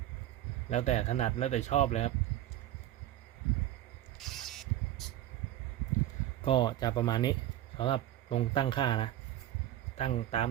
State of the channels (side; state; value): left; quieter; 13.1 dB